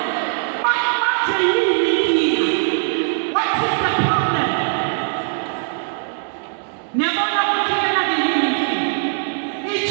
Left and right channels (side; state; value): left; silent; 61 dB below the other